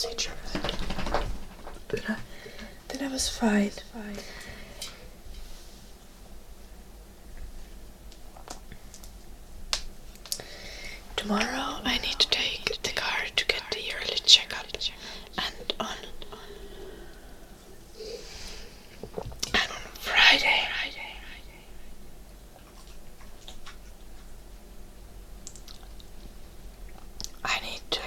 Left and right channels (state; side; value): identical; both; correlation 1.00